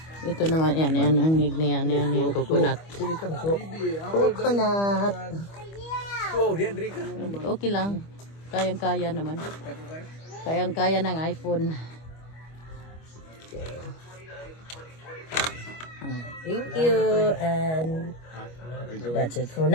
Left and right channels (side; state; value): right; late; 25 ms